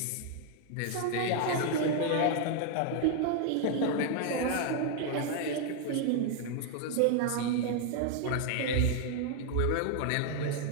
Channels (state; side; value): different; both; correlation 0.00